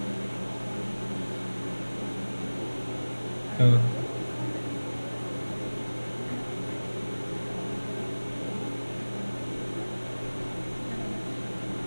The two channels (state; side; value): inverted; both; correlation -1.00